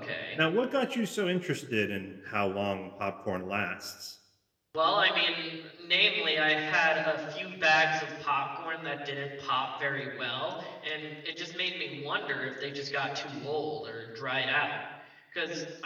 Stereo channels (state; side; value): identical; both; correlation 1.00